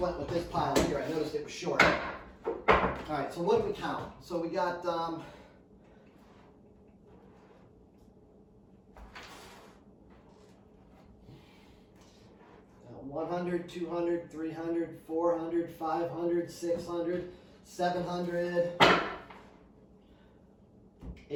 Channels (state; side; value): identical; both; correlation 1.00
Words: with this pile here. I noticed it was short. All right, so what did we count? So we got 100, 200, 300, 400, 500, 600, 700,